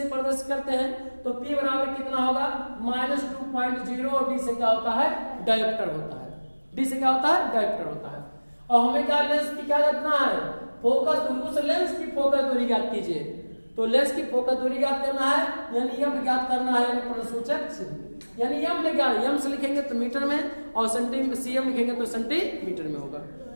प्रदर्शित करते हैं तो P बराबर कितना होगा, -2.0, और D से क्या होता है, डायोप्टर होता है। D से क्या होता है, डायोप्टर होता है। और हमें क्या, लेंस की क्या करना है, फोकस दूरी, उस लेंस की फोकस दूरी ज्ञात कीजिए। तो लेंस की फोकस दूरी ज्ञात करना है, यानी यम ज्ञात करना है, यानी प्रश्नसूचक चिन्ह, यानी यम में क्या, यम से लिखेंगे तो मीटर में, और सीएम लिखेंगे तो सेंटीमीटर में होगा।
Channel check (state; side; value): inverted; both; correlation -1.00